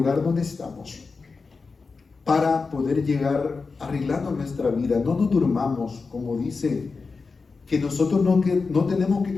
donde estamos para poder llegar arreglando nuestra vida. No nos durmamos, como dice, que nosotros no tenemos que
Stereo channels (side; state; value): right; quieter; 4.4 dB